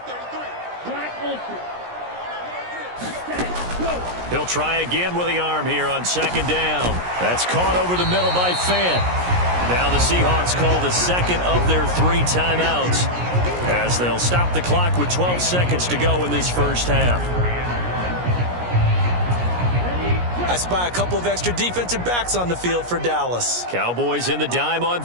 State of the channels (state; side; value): late; left; 17 ms